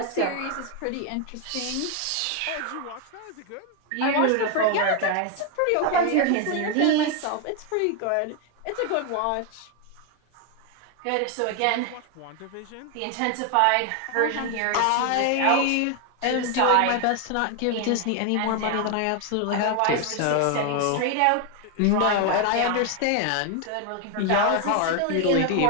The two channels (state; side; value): different; both; correlation 0.01